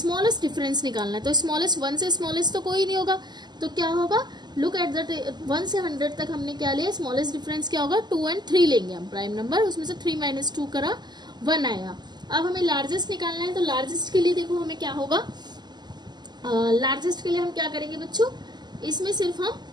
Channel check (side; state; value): left; late; 0.21 ms